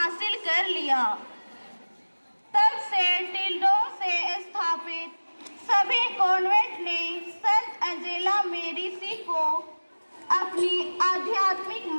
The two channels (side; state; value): both; inverted; correlation -1.00